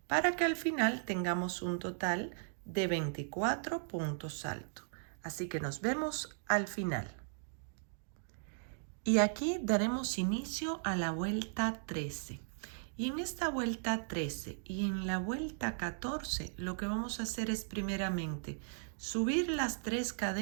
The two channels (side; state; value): left; silent; digital silence